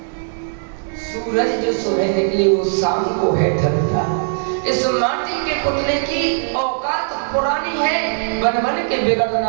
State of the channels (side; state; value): left; silent; digital silence